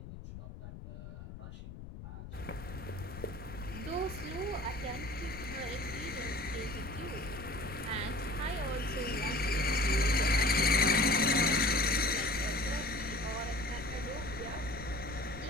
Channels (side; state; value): left; noise; rumble, 12 dB below the sound